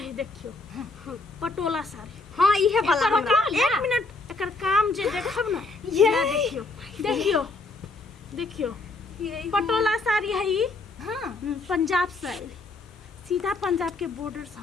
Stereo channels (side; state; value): right; quieter; 3.4 dB